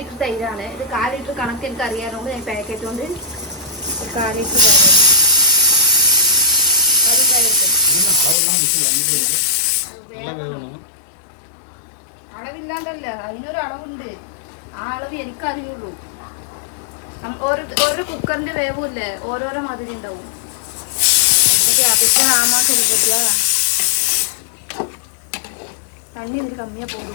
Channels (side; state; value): right; drops out; at 8.3 s